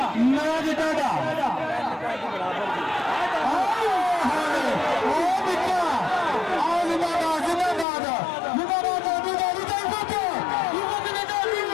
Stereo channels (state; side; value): drops out; right; at 7.9 s